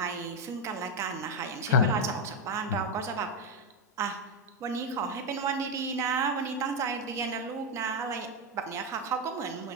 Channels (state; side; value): normal; both; correlation 0.06